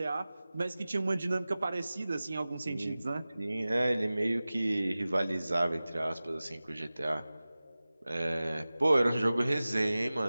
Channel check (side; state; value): both; inverted; correlation -0.97